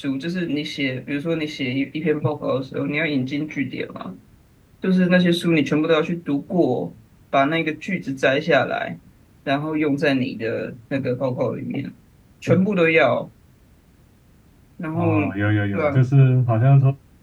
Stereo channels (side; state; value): both; identical; correlation 1.00